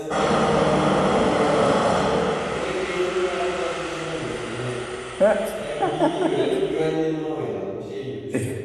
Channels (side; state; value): both; identical; correlation 1.00